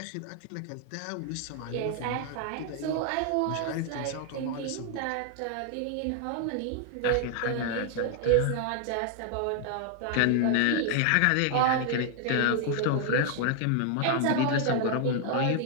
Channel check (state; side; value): different; both; correlation 0.00